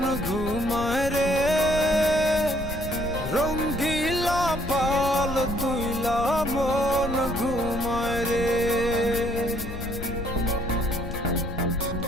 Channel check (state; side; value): noise; left; rumble, 8 dB below the sound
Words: ঘুমায় রে, রঙ্গিলা পাল তুইলা মন ঘুমায় রে।